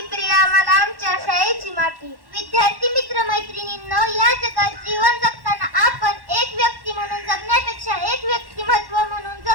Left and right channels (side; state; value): left; late; 1.1 ms